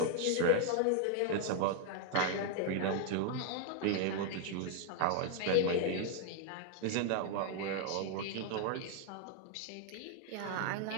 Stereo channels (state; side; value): different; both; correlation 0.00